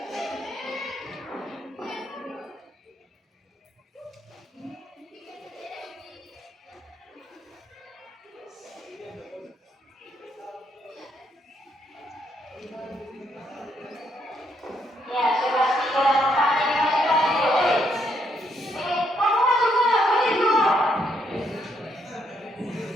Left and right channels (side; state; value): both; normal; correlation 0.74